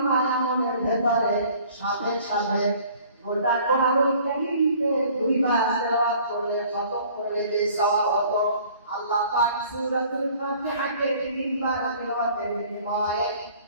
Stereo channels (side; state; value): both; inverted; correlation -0.53